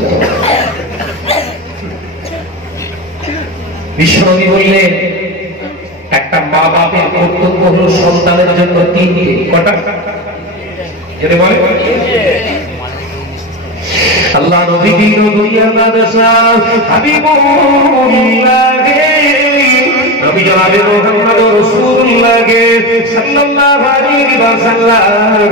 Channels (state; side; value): normal; both; correlation 0.21